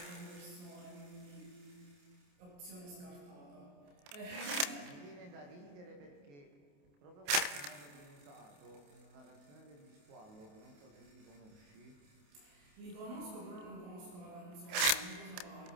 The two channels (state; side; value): late; left; 28 ms